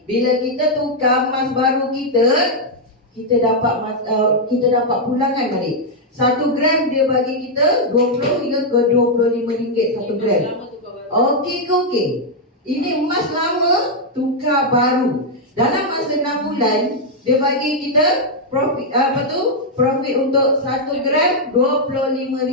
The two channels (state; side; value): normal; both; correlation -0.02